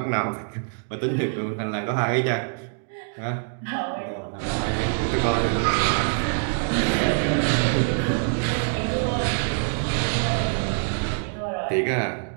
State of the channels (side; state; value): left; silent; digital silence